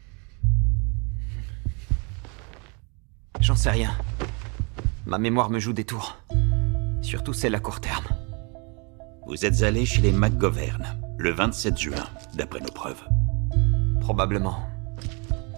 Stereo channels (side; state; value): left; quieter; 33.2 dB